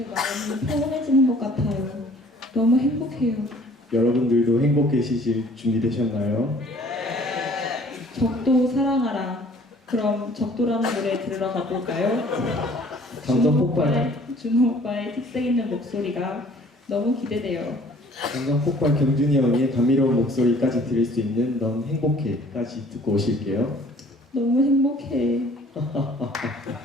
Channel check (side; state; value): both; normal; correlation 0.54